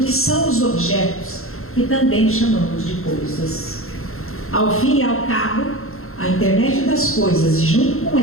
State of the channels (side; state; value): right; late; 0.62 ms